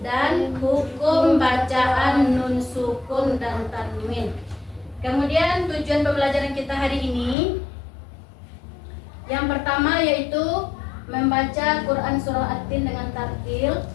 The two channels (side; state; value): right; drops out; at 7.4 s